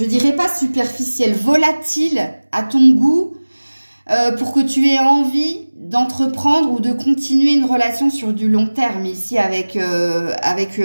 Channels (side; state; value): both; inverted; correlation -1.00